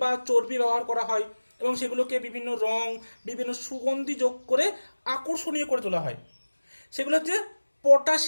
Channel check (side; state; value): both; inverted; correlation -1.00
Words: বা চর্বি ব্যবহার করা হয় এবং সেগুলোকে বিভিন্ন রং, বিভিন্ন সুগন্ধি যোগ করে আকর্ষণীয় করে তোলা হয়। সেগুলো হচ্ছে